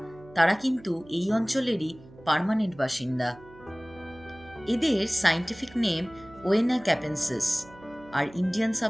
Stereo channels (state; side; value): noise; right; hum, 22 dB below the sound